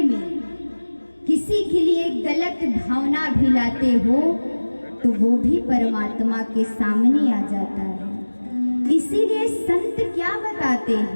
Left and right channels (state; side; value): inverted; both; correlation -1.00